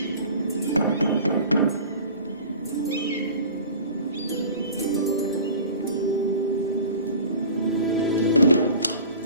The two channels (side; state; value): both; inverted; correlation -0.41